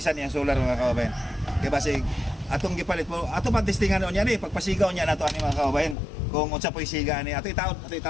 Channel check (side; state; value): right; drops out; at 6.0 s